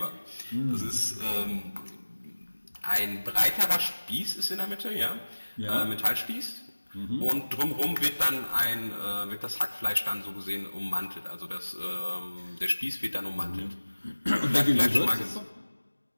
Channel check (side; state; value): both; inverted; correlation -1.00